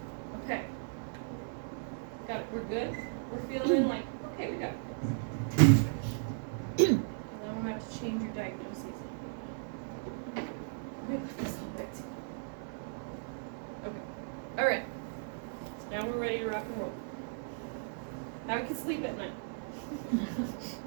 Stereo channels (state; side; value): silent; left; digital silence